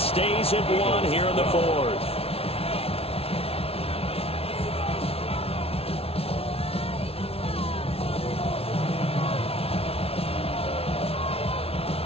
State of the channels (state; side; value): late; right; 0.29 ms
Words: at 1 here in the 4th.